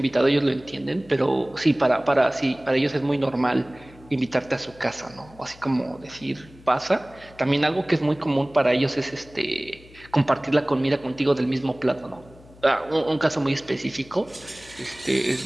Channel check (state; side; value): noise; left; hum, 23 dB below the sound